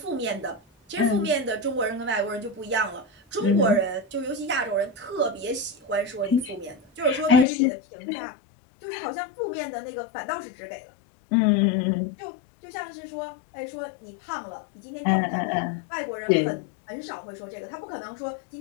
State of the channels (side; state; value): right; drops out; at 7.5 s